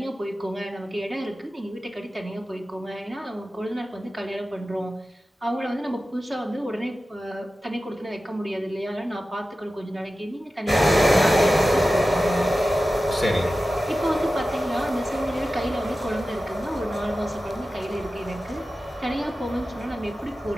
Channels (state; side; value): normal; both; correlation 0.94